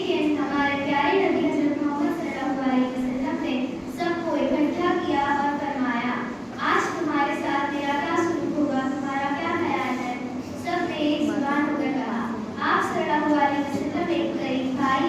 हमारे प्यारे नबी हज़रत मोहम्मद सल्लल्लाहु अलैहि वसल्लम ने सबको इकट्ठा किया और फरमाया, आज तुम्हारे साथ मेरा क्या सलूक होगा, तुम्हारा क्या ख्याल है। सबने एक जुबान होकर कहा, आप सल्लल्लाहु अलैहि वसल्लम एक करीम भाई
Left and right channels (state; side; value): identical; both; correlation 1.00